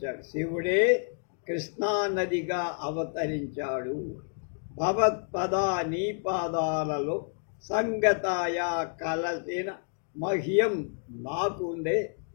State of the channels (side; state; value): right; silent; 58 dB below the other